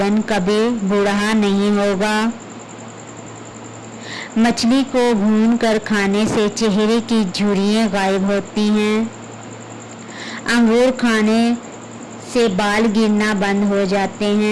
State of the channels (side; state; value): both; identical; correlation 1.00